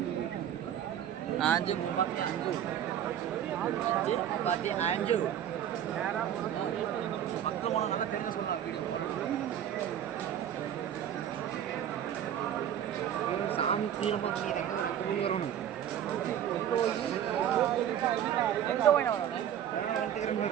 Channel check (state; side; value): quieter; left; 10.2 dB